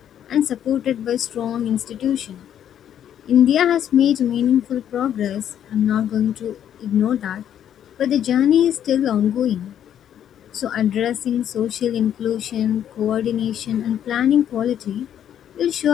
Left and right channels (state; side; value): quieter; right; 10.0 dB